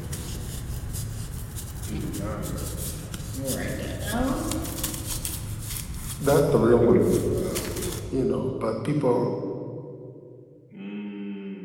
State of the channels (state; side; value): identical; both; correlation 1.00